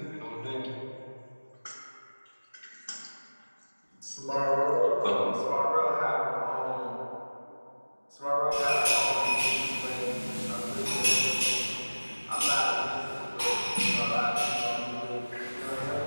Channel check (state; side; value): inverted; both; correlation -1.00